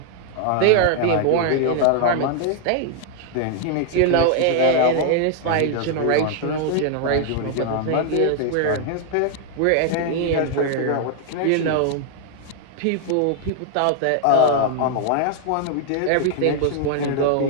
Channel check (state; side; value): different; both; correlation 0.00